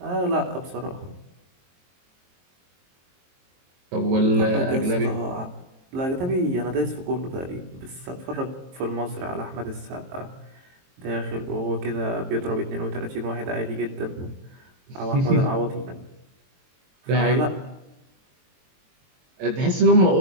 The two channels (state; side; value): late; left; 22 ms